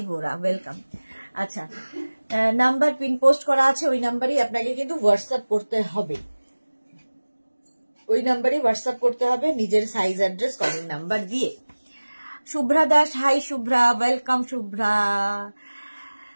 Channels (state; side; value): inverted; both; correlation -1.00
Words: Bora, welcome. আচ্ছা, নাম্বার পিন পোস্ট করা আছে, ওই নাম্বারেই আপনাকে কিন্তু হোয়াটসঅ্যাপ করতে হবে, ওই নাম্বারেই হোয়াটসঅ্যাপ করতে হবে নিজের সাইজ, অ্যাড্রেস, কলিং নাম্বার দিয়ে। Shubhra Das, hi Shubhra, welcome Shubhra.